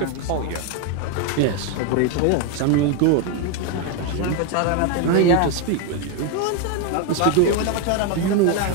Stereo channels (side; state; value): both; different; correlation 0.01